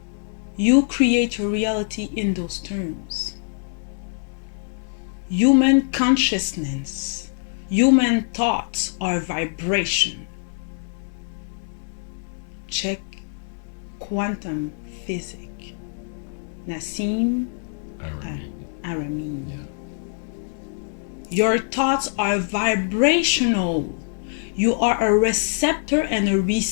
You create your reality in those terms. Human consciousness, human thoughts are vibration. Check quantum physics. Nassim Aramein. Yeah. Your thoughts are vibrational. You are a receptor and a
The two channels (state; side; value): silent; right; digital silence